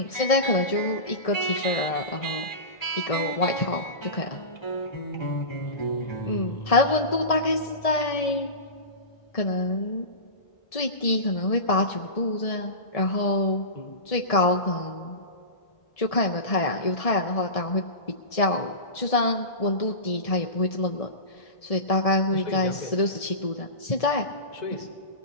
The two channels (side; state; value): right; late; 1.7 ms